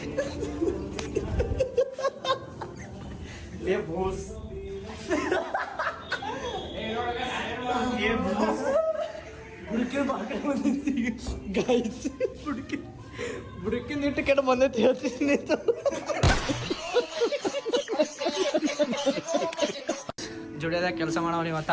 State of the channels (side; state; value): both; identical; correlation 1.00